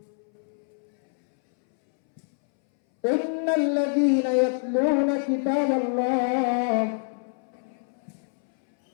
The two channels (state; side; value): silent; right; 61 dB below the other